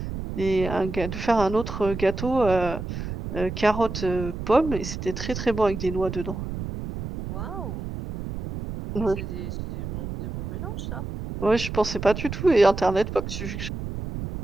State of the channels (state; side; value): noise; right; rumble, 6 dB below the sound